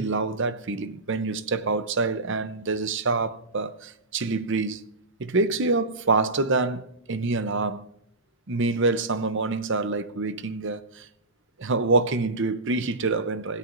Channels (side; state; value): left; quieter; 3.0 dB